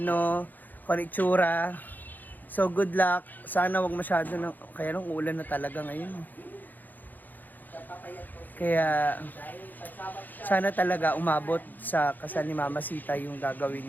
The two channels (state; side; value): late; right; 0.085 ms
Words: kung ano yung itsura. So good luck. Sana wag masyado ng... Kaya nung ulan na talaga ngayon. Kaya sana talaga umabot sa kasal ni Mama Sita yung gagawin